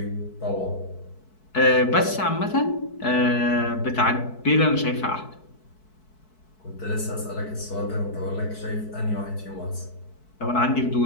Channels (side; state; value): right; late; 4.6 ms